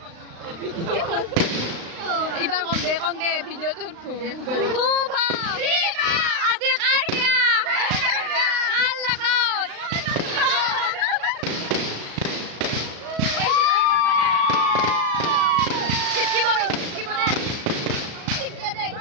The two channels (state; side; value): late; left; 36 ms